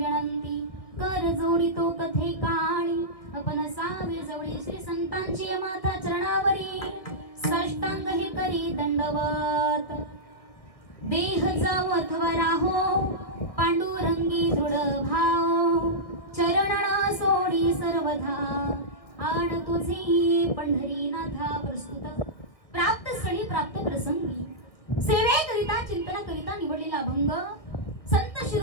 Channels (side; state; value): right; late; 1.6 ms